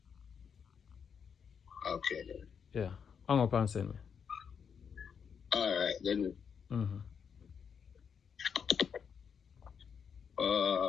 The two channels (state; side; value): quieter; right; 6.9 dB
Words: Okay, then. Yeah. Hang up and send me. Alright, then.